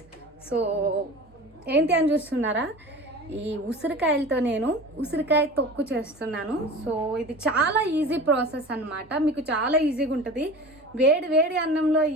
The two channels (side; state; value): both; normal; correlation 0.36